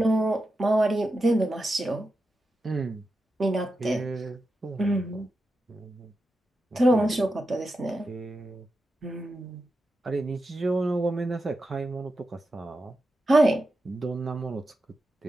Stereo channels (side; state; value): both; normal; correlation 0.89